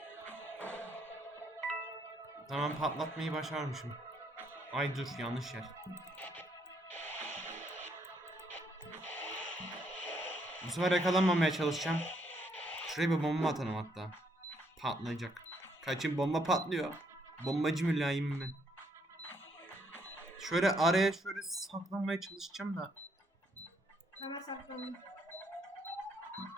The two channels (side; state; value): both; normal; correlation 0.71